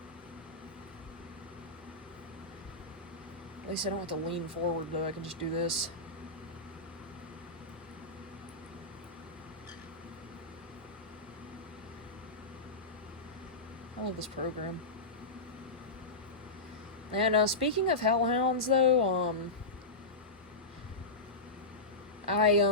At least I don't have to lean forward, though. I can just do this. I love this program. And speaking of hellhounds, though, I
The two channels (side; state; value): right; quieter; 3.1 dB